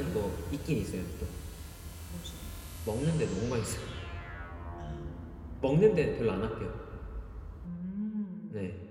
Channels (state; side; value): identical; both; correlation 1.00